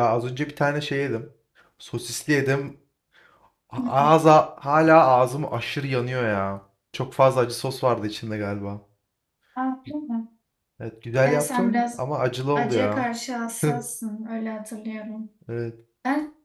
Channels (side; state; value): both; identical; correlation 1.00